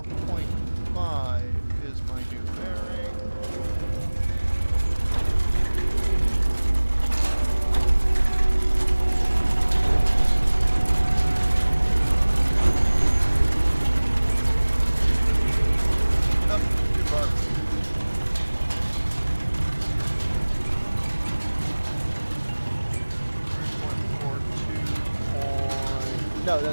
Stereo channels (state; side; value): inverted; both; correlation -1.00